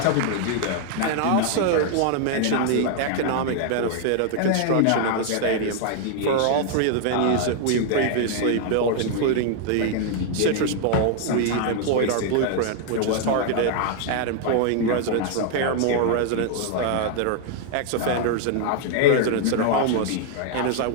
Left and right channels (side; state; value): both; different; correlation 0.00